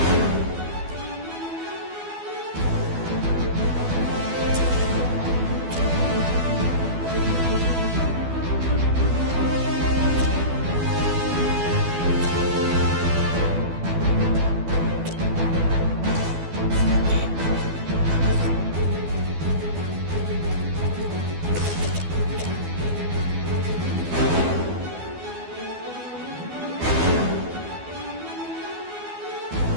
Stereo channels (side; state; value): left; late; 12 ms